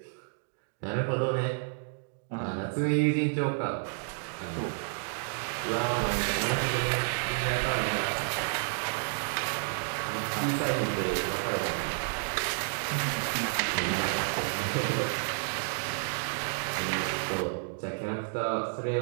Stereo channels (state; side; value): silent; left; 57 dB below the other